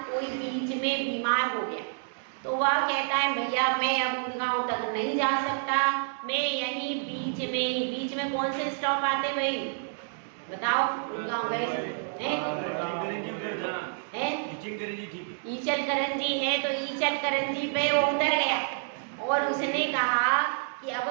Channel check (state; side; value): silent; left; digital silence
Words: कोई बीच में बीमार हो गया तो वह कहता है भैया मैं अब गुड़गांव तक नहीं जा सकता, मैं यहीं बीच में कौन से स्टॉप आते भाई बताओ? गुड़गांव गए ईचलकरंजी है, तो ईचलकरंजी पे वो उतर गया और उसने कहा कि